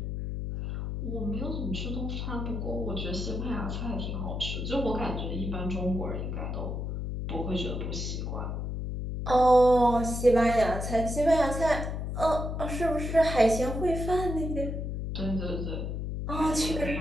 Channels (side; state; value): left; noise; hum, 3 dB below the sound